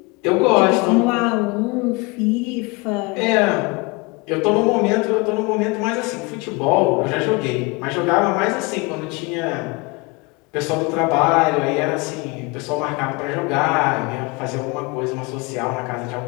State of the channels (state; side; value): quieter; right; 26.7 dB